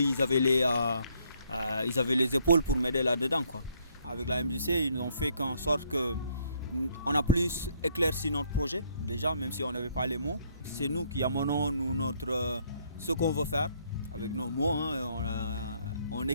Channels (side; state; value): both; inverted; correlation -0.69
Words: ils avaient les épaules pour m'aider là-dedans, quoi. Avec la MJC, ils nous ont fait en sorte qu'on a plus éclairci notre projet, déjà, même si on n'avait pas les mots. C'est nous qui amenons ce qu'on veut faire, avec nos mots, hein, on